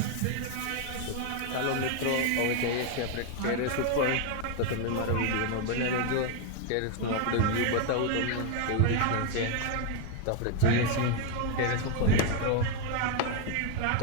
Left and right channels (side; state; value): both; different; correlation 0.01